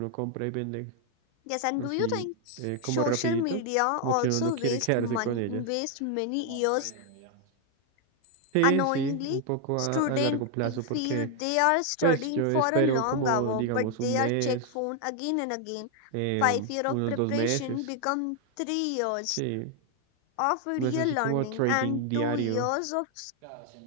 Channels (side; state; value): both; different; correlation 0.00